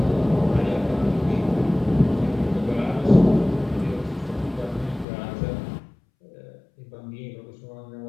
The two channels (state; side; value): drops out; right; at 5.1 s